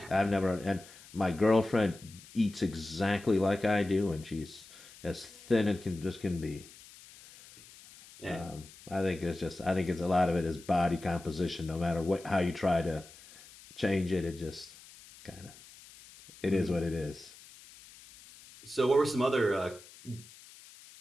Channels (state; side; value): noise; left; hiss, 21 dB below the sound